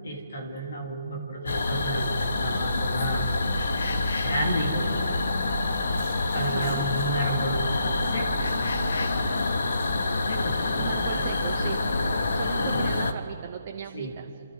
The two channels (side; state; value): both; inverted; correlation -0.76